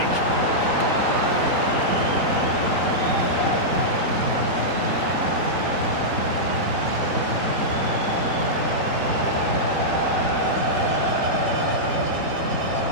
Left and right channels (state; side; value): late; left; 3.9 ms